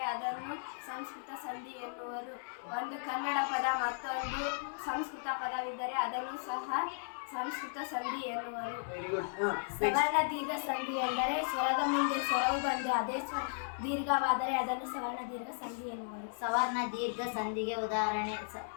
ಅದನ್ನು ಸಂಸ್ಕೃತ ಸಂಧಿ ಎನ್ನುವರು. ಒಂದು ಕನ್ನಡ ಪದ ಮತ್ತೊಂದು ಸಂಸ್ಕೃತ ಪದವಿದ್ದರೆ ಅದನ್ನು ಸಹ ಸಂಸ್ಕೃತ ಸಂಧಿ ಎನ್ನುವರು. ಸವರ್ಣ ದೀರ್ಘ ಸಂಧಿ ಎಂದರೆ ಸ್ವರದ ಮುಂದೆ ಸ್ವರವು ಬಂದು ಅದೇ ದೀರ್ಘವಾದರೆ ಅದನ್ನು ಸವರ್ಣ ದೀರ್ಘ ಸಂಧಿ ಎನ್ನುವರು. ಸವರ್ಣ ದೀರ್ಘ ಸಂಧಿಗೆ ಉದಾಹರಣೆ:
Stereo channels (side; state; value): right; silent; 54 dB below the other